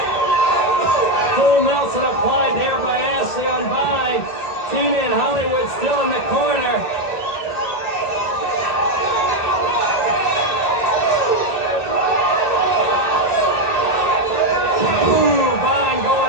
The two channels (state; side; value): late; right; 2.0 ms